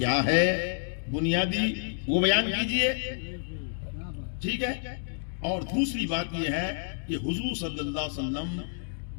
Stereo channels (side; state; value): right; silent; digital silence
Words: ہے، بنیادی وہ بیان کیجئے، ٹھیک ہے؟ اور دوسری بات یہ ہے کہ حضور صلی اللہ علیہ وسلم